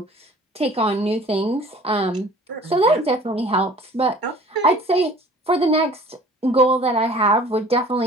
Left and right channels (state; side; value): normal; both; correlation 0.48